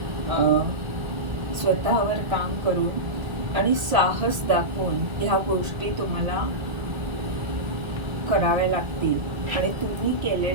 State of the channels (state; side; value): late; left; 1.7 ms